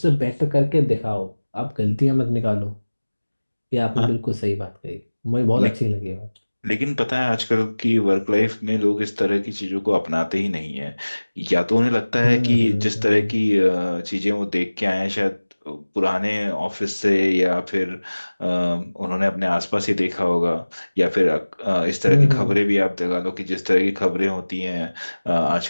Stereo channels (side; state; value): both; inverted; correlation -1.00